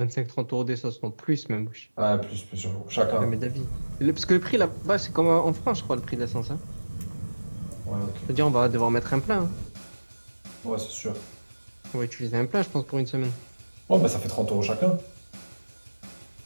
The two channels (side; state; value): both; inverted; correlation -1.00